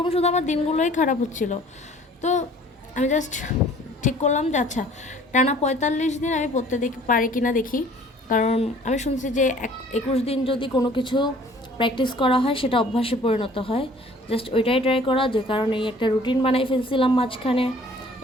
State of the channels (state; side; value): normal; both; correlation 0.52